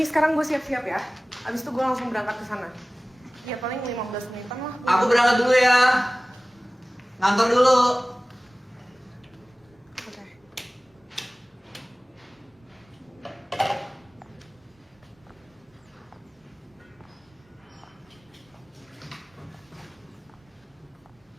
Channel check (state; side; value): normal; both; correlation 0.98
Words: sekarang gue siap-siap ya. Abis itu gue langsung berangkat ke sana. Ya paling 15 menitan lah. Aku berangkat dulu ya. Ngantor dulu. Oke.